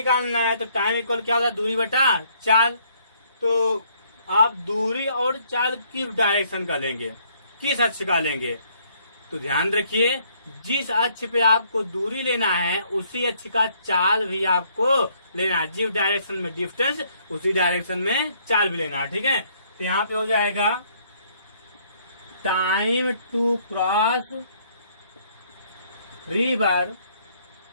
है तो टाइम इक्वल क्या होता है, दूरी बटा चाल। तो आप दूरी और चाल किस डायरेक्शन का लेंगे, किस अक्ष का लेंगे, तो ध्यान रखिए जिस अक्ष पे आपको दूरी लेना है उसी अक्ष का चाल भी आपको लेना है, जिस डायरेक्शन में डिस्टेंस उसी डायरेक्शन में चाल भी लेना है, ठीक है। तो यहाँ पे हो जाएगा time to cross river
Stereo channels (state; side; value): inverted; both; correlation -0.66